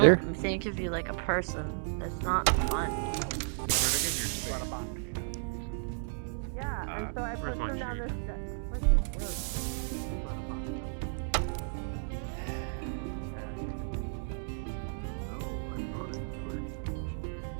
don't think of you like a person. That's not fun. Yeah, and so I put them down this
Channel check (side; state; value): left; silent; digital silence